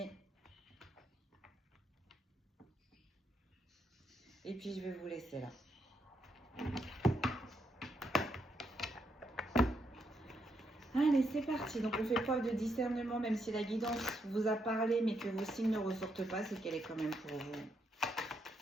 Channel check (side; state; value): both; normal; correlation 0.79